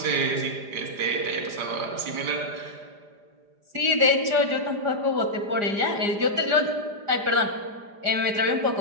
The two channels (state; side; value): late; left; 4.9 ms